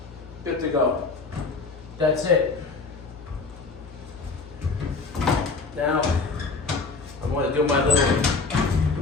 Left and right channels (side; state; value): right; quieter; 4.1 dB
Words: Good to go. That's it. Now, I'm going to do my